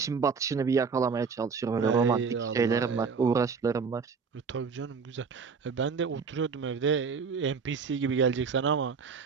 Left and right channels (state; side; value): quieter; left; 5.5 dB